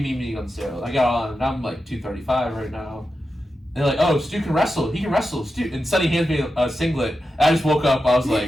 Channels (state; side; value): normal; both; correlation 0.90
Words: mean being on the scale? I got on, and I'm like 235 right now. They're like, oh, Stu can wrestle. He can wrestle, Stu. And Sonny hands me a singlet. I just woke up. I was